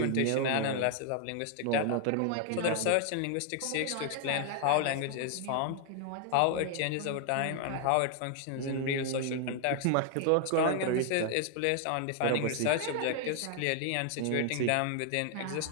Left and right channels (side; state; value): both; different; correlation 0.00